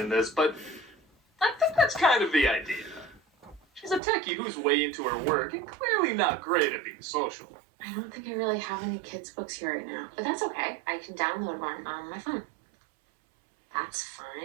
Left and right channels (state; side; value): drops out; left; at 4.0 s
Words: in this, but I think that's kind of the idea. She's a techie who's way into her work and clearly not great at being social. I don't think I really have any kids' books here right now, but that's okay. I can download one on my phone. That's